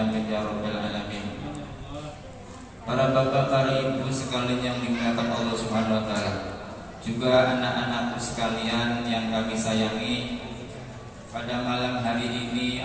ya rabbal alamin. Para bapak, para ibu sekalian yang dimuliakan Allah Subhanahu wa taala, juga anak-anakku sekalian yang kami sayangi, pada malam hari ini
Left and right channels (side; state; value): both; identical; correlation 1.00